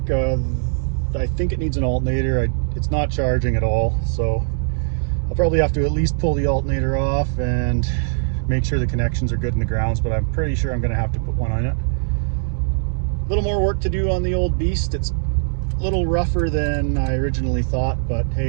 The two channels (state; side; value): silent; left; digital silence